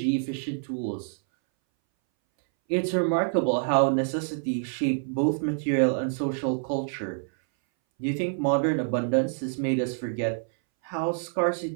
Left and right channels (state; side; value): silent; left; 60 dB below the other